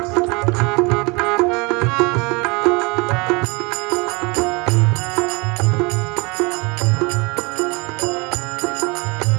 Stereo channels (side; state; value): left; quieter; 27.9 dB